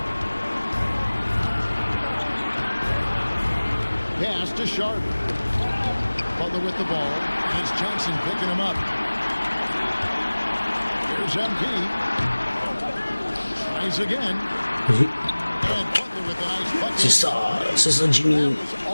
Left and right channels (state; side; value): inverted; both; correlation -1.00